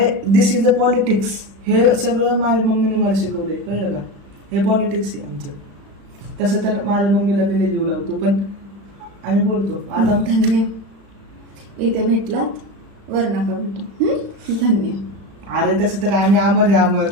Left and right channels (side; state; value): left; late; 35 ms